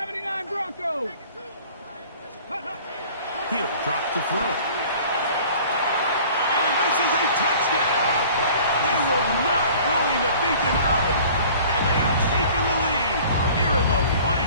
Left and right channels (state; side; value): inverted; both; correlation -0.48